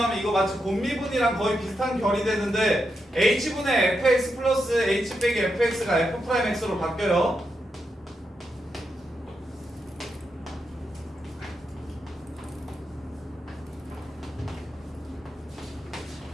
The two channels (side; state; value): both; normal; correlation 0.85